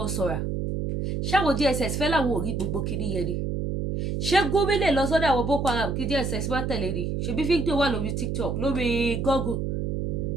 ṣáwọn DSS fẹ́ láwọn ò rí gbogbo kìíní yẹn ni ṣé Gumi lè lọ sọ́dọ̀ àwọn Boko Haram kí DSS má tẹ̀lé ni ṣebí fídíò wà lórí TikTok lórí Google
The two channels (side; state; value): right; noise; hum, 1 dB below the sound